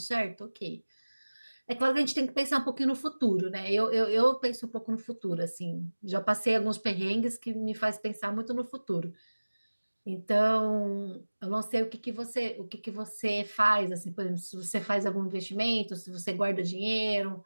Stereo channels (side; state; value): both; inverted; correlation -1.00